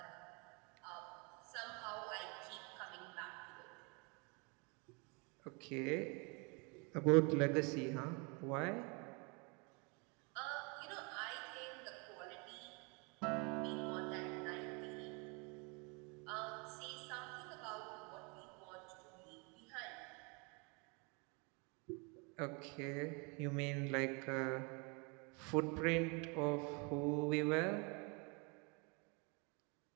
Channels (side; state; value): left; quieter; 31.5 dB